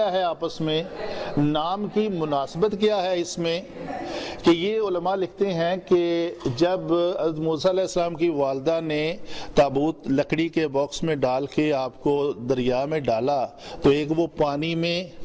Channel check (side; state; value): both; identical; correlation 1.00